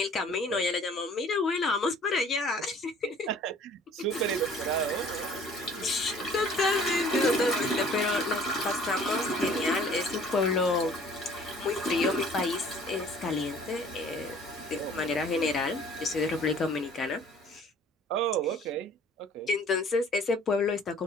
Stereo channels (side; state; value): both; normal; correlation 0.53